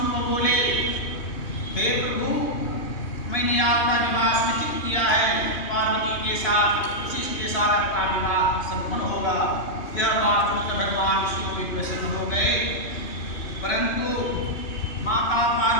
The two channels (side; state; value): right; late; 2.7 ms